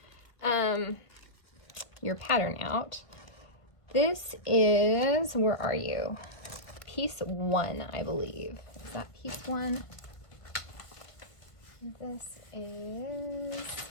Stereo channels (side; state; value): right; late; 1.5 ms